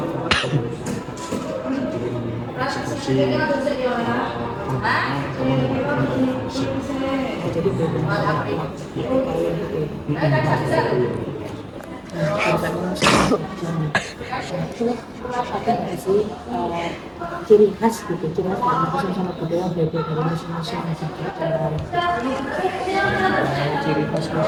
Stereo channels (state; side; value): identical; both; correlation 1.00